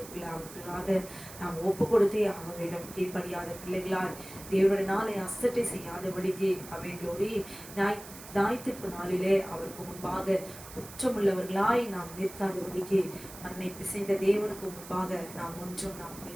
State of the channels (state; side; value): noise; right; hiss, 15 dB below the sound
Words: நாம் ஒப்பு கொடுத்தே ஆக வேண்டும். கீழ்ப்படியாத பிள்ளைகளாய் தேவனுடைய நாளை அசட்டை செய்யாதபடிக்கு ஆமென். க்ளோரி. ஞாயிற்றுப்பு நாளிலே அவருக்கு முன்பாக குற்றமுள்ளவர்களாய் நாம் நிற்காதபடிக்கு மண்ணை பிசைந்த தேவனுக்கு முன்பாக நாம் ஒன்றும் நாம்